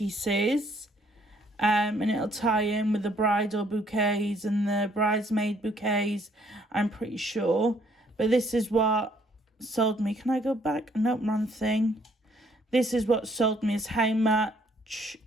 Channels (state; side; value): normal; both; correlation 0.65